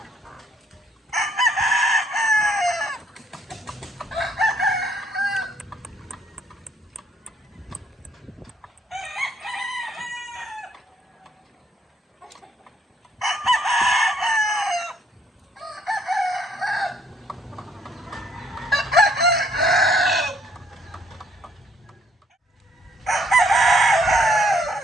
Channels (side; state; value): both; normal; correlation 0.67